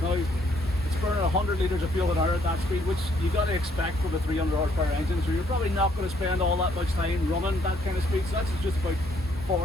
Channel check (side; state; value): both; normal; correlation 0.68